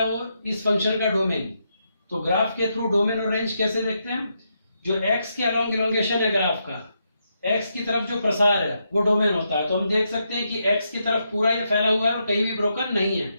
वो इस फंक्शन का डोमेन, तो ग्राफ के थ्रू डोमेन और रेंज कैसे देखते हैं? जो एक्स के अलोंग इलोंगेशन है ग्राफ का, एक्स की तरफ जो प्रसार है वो डोमेन होता है। तो हम देख सकते हैं कि एक्स की तरफ पूरा ये फैला हुआ है और कहीं भी ब्रोकन नहीं है,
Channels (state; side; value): inverted; both; correlation -0.81